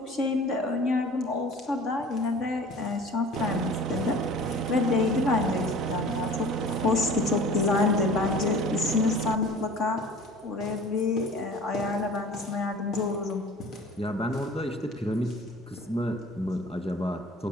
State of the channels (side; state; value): both; normal; correlation 0.44